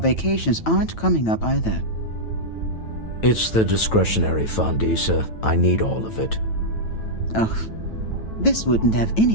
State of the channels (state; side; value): late; right; 9.1 ms